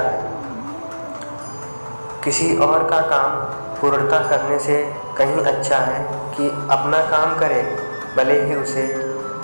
किसी और का काम पूर्णता करने से कहीं अच्छा है कि अपना काम करे, भले ही उसे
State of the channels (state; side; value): inverted; both; correlation -1.00